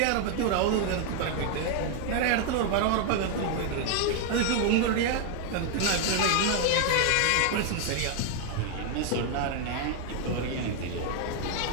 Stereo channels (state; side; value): different; both; correlation 0.00